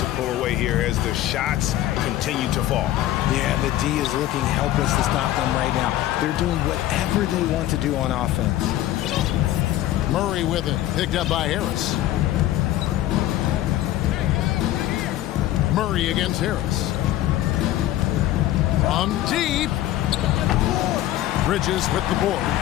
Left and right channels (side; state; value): right; quieter; 13.9 dB